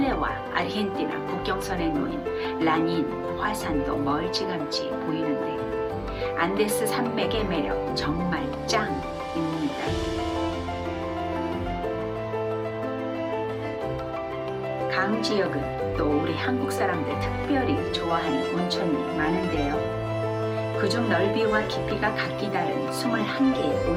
아르헨티나 국경선에 놓인 라닌 화산도 멀찌감치 보이는데 안데스 산맥의 매력 정말 짱입니다. 강 지역은 또 우리 한국 사람들 특별히 좋아하는 온천이 많은데요. 그중 넓이와 깊이가 각기 다른 21개의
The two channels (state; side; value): identical; both; correlation 1.00